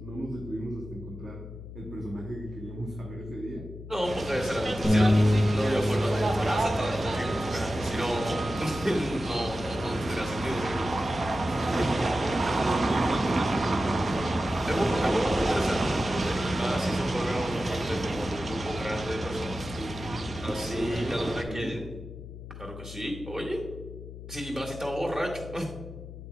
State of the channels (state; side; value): noise; left; hum, 12 dB below the sound